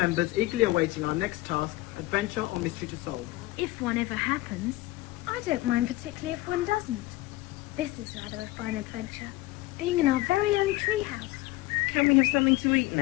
eagerly awaiting our next task, adventure or mystery to solve. If one ever happens. I don't mind particularly if one doesn't. This is rather a fine adventure. Being in our very own treehouse. Can we have something to eat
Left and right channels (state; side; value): quieter; right; 18.8 dB